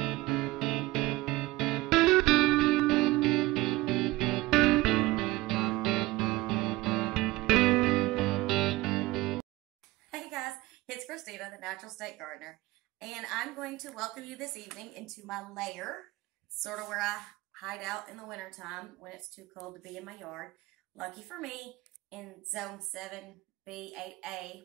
guys, it's Christina, the Natural State Gardener, and I'm going to welcome you this evening into my lair, sort of where I hide out in the wintertime when it's too cold to be in my yard. Lucky for me, in Zone 7B, 8A,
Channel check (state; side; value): quieter; left; 19.6 dB